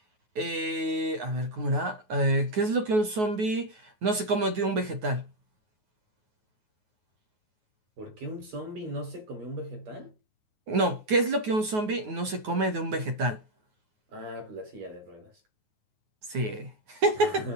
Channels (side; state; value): left; late; 9.4 ms